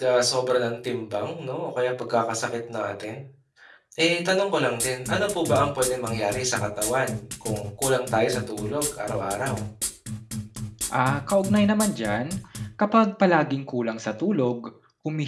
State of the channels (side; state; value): both; identical; correlation 1.00